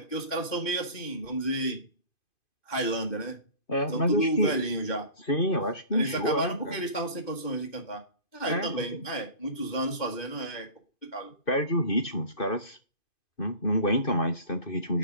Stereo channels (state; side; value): late; right; 2.5 ms